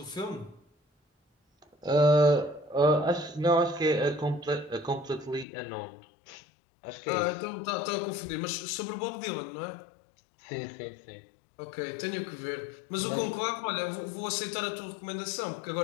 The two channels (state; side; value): drops out; right; at 5.5 s